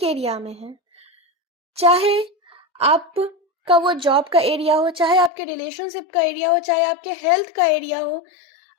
एरिया में है। चाहे आपका वो जॉब का एरिया हो, चाहे आपके रिलेशनशिप का एरिया हो, चाहे आपके हेल्थ का एरिया हो,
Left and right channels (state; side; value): drops out; right; at 5.3 s